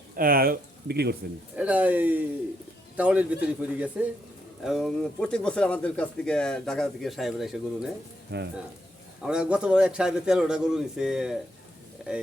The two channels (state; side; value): normal; both; correlation 0.78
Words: বিক্রি করছেন? এটা এই টাউনের ভিতরে পড়ে গেছে এবং প্রত্যেক বছর আমাদের কাছ থেকে ঢাকা থেকে সাহেবরা এসে গরু নেয়। হ্যাঁ, আমরা গতবার এক সাহেবে 13টা গরু নিছে।